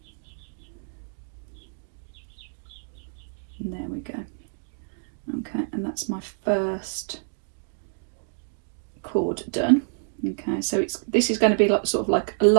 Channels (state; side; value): silent; left; digital silence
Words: And there we go. Okay, and that's my first cord done. Okay, so this is going to be like sort of like a